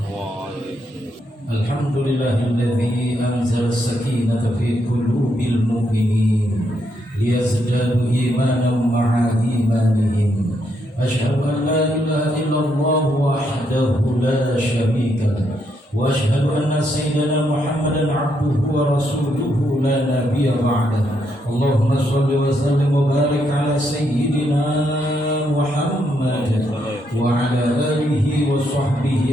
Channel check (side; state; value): both; normal; correlation 0.77